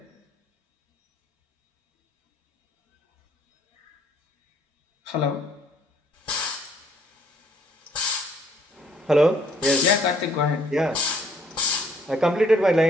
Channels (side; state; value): both; normal; correlation 0.64